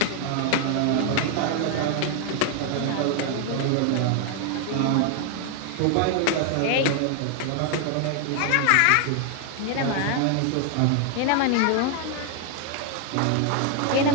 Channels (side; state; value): both; different; correlation 0.00